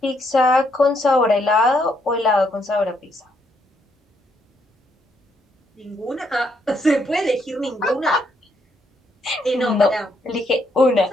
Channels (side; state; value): both; normal; correlation 0.74